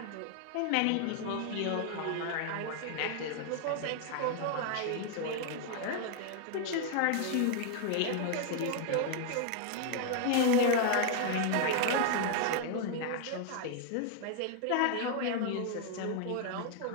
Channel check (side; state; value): both; different; correlation 0.00